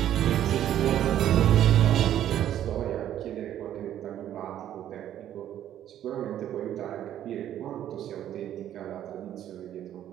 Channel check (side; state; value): left; quieter; 11.3 dB